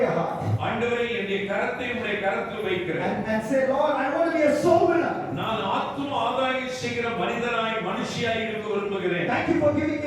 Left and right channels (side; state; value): both; identical; correlation 1.00